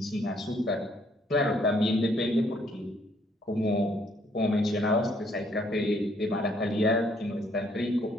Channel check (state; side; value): normal; both; correlation 0.67